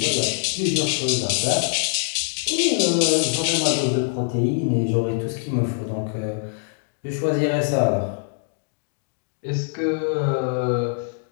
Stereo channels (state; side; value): silent; right; digital silence